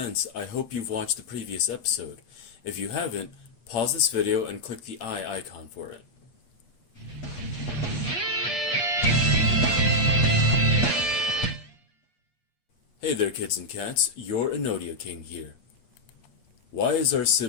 I hope you've watched the previous episode. If you haven't, pause this video and click the eye icon for it. Hey there kids and cats, your Inotia King here. Why is our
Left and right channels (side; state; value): right; late; 8.4 ms